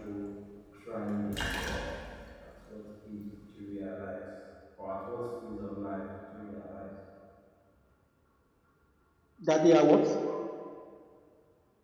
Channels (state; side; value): identical; both; correlation 1.00